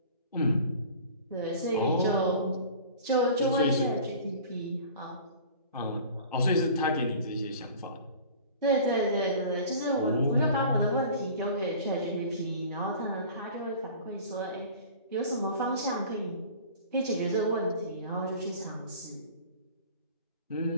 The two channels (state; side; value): inverted; both; correlation -0.43